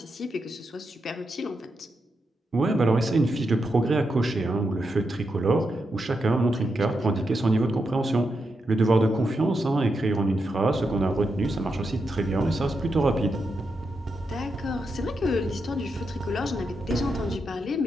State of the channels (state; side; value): normal; both; correlation 0.85